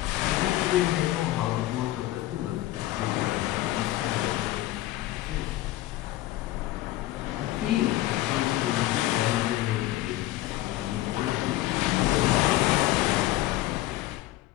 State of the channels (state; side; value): quieter; right; 16.0 dB